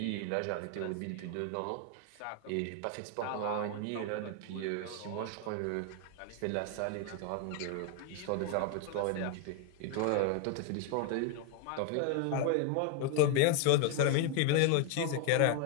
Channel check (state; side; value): different; both; correlation 0.01